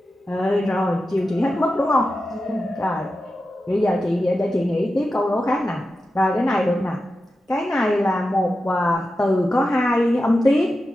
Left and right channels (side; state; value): both; normal; correlation 0.91